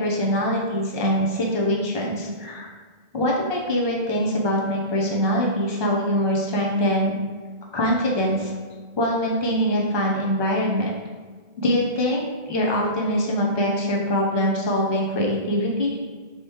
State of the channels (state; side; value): late; left; 1.2 ms